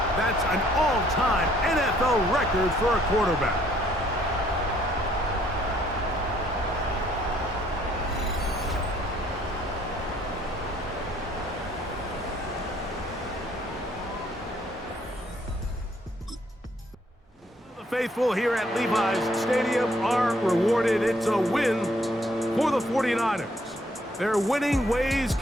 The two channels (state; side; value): normal; both; correlation 0.65